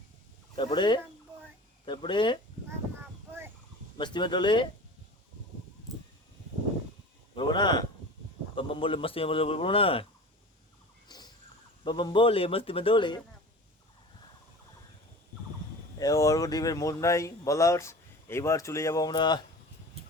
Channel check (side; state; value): both; normal; correlation 0.37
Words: তারপরে তারপরে মস্তি মে টোলে বলবো না, বাম বাম বলে মস্তি মে বলবো না, বাম বাম বলে মস্তি মে দোলে। অর্ঘ্যদীপের মন নাই বলার। এইবার চলে যাব আমরা